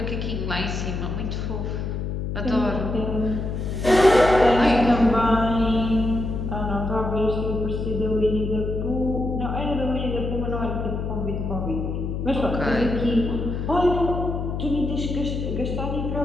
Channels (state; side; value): noise; left; hum, 3 dB below the sound